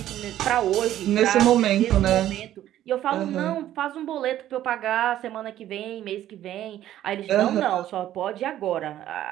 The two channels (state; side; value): quieter; left; 12.6 dB